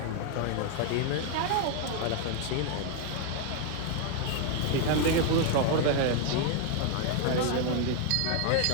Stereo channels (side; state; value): both; different; correlation 0.00